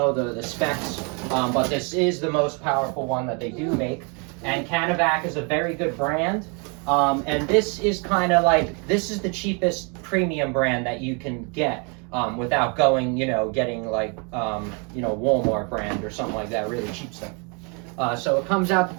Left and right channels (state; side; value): quieter; left; 34.5 dB